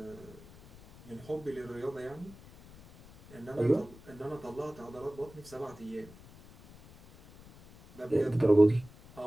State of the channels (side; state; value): left; noise; rumble, 21 dB below the sound